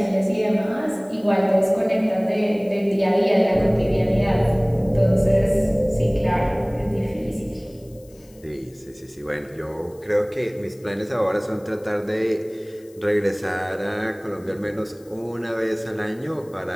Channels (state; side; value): noise; left; hiss, 28 dB below the sound